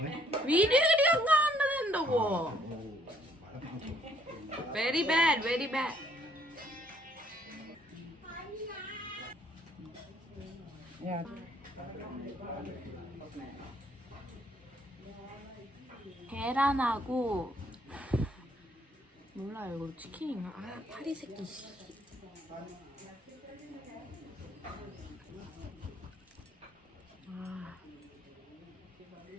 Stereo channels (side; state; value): both; normal; correlation 0.66